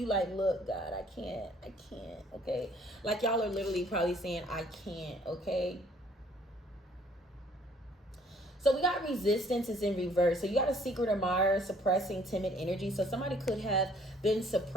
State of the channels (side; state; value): both; normal; correlation 0.60